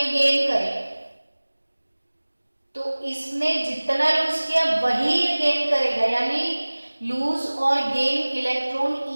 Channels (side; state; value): both; inverted; correlation -1.00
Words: गेन करे। तो इसने जितना लूज किया वही ये गेन करेगा, यानी लूज और गेन इलेक्ट्रॉन